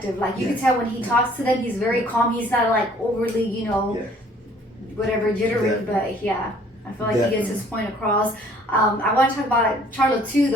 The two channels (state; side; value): normal; both; correlation 0.57